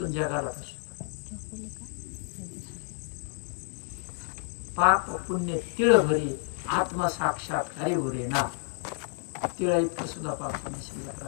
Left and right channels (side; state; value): right; silent; 57 dB below the other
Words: जगाला फसतो. पाप पुण्य तिळ भरी आत्मा साक्षात हरी भरे ना. तिळा इतकं सुद्धा पाप पुण्य शिल्लक